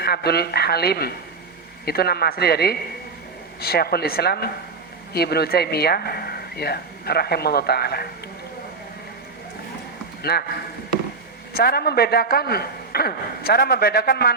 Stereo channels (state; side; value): quieter; left; 4.3 dB